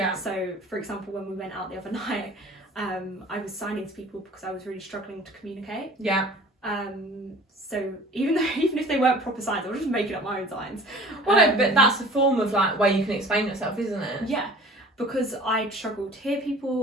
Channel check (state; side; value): normal; both; correlation 0.46